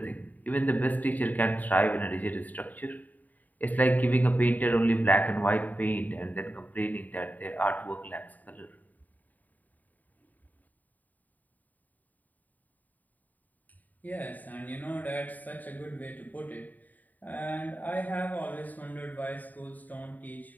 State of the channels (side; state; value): right; late; 0.081 ms